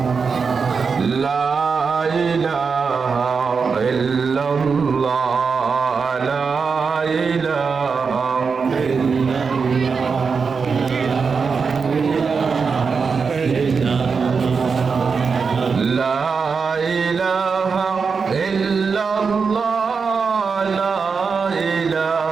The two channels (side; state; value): left; quieter; 5.3 dB